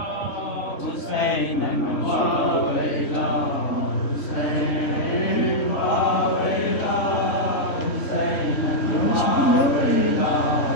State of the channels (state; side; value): late; right; 3.5 ms